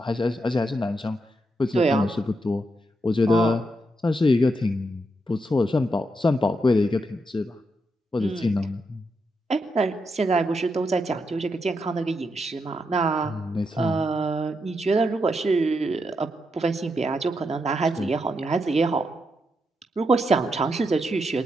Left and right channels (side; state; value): both; normal; correlation 0.82